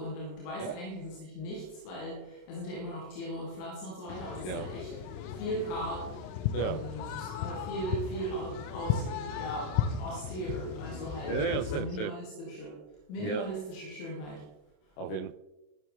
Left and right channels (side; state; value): right; late; 27 ms